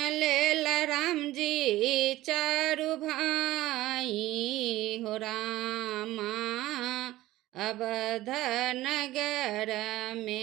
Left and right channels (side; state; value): left; quieter; 16.4 dB